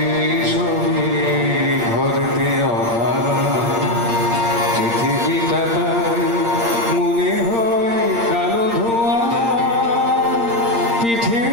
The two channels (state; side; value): late; left; 8.7 ms